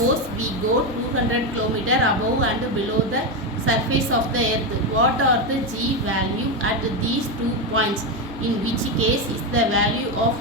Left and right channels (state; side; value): normal; both; correlation 0.10